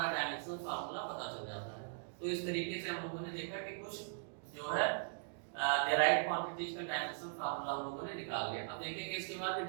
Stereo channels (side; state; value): left; silent; digital silence